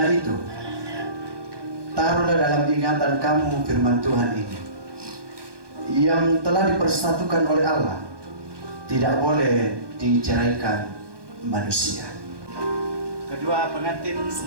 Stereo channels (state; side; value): late; left; 1.2 ms